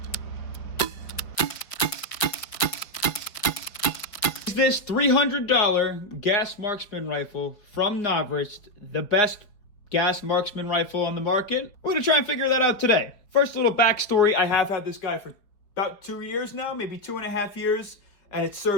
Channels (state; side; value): late; right; 5.0 ms